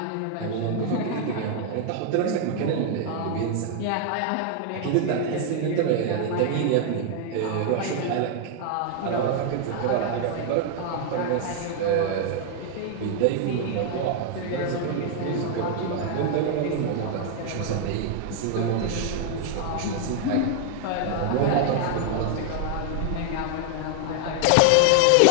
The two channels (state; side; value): different; both; correlation 0.00